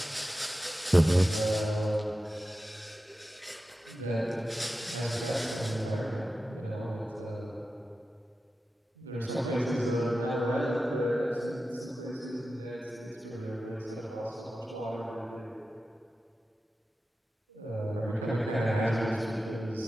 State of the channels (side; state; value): both; normal; correlation 0.93